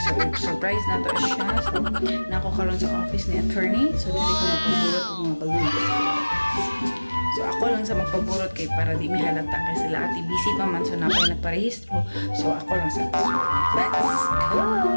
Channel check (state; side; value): inverted; both; correlation -1.00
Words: So, surprise na to siya. So, nako karon sa office ni attorney. So, dili ko magpaburot ng mga balloon. So, ako lang sa magpaburot kay para di may halata kasi sila ati busy pa man. So, napay nagparehistro. So, ako lang sa let's